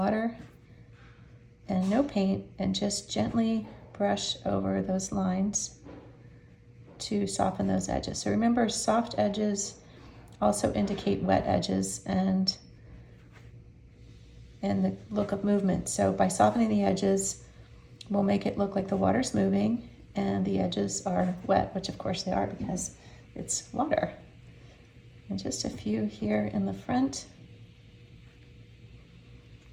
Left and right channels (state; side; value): identical; both; correlation 1.00